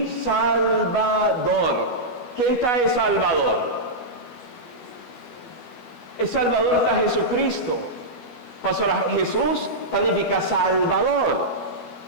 Salvador. ¿Quién está el Salvador? El Salvador está Jesucristo. Pastora, Jesús significa Salvador.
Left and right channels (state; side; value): late; right; 12 ms